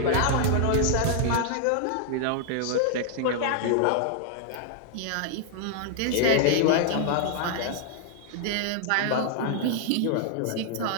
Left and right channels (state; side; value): different; both; correlation -0.01